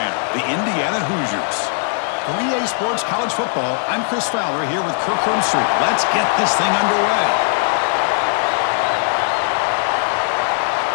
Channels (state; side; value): silent; right; 67 dB below the other